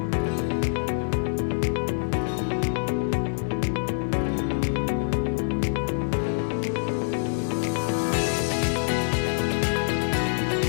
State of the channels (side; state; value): right; silent; digital silence